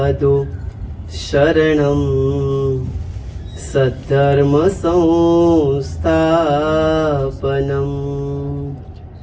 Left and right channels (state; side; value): identical; both; correlation 1.00